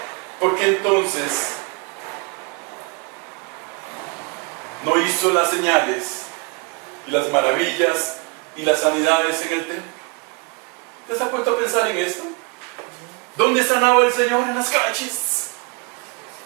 ¿por qué entonces no hizo las señales y las maravillas y las sanidades en el templo? ¿Te has puesto a pensar en esto? ¿Dónde sanaba el Señor? En las calles.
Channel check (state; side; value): quieter; left; 30.8 dB